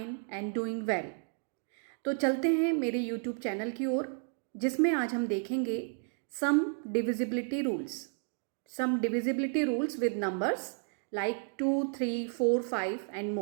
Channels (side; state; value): left; silent; 56 dB below the other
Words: and doing well. तो चलते हैं मेरे यूट्यूब चैनल की ओर, जिसमें आज हम देखेंगे some divisibility rules with numbers like 2, 3, 4, 5 and